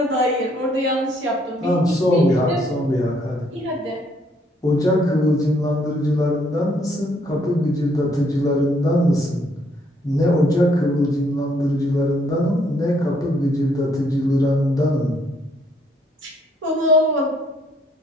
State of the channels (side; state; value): both; normal; correlation 0.68